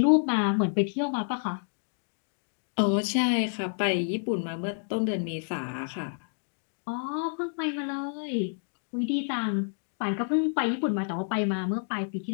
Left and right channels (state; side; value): silent; right; digital silence